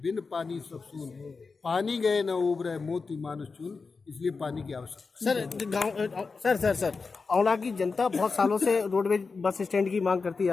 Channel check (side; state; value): right; quieter; 4.5 dB